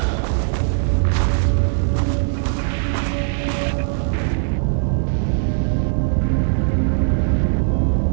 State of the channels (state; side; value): silent; left; digital silence